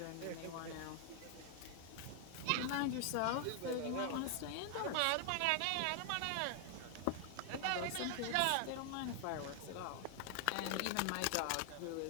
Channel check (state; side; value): different; both; correlation 0.00